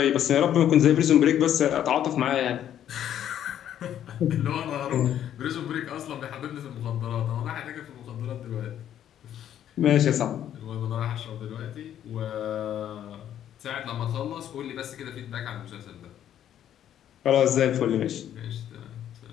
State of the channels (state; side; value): quieter; right; 10.6 dB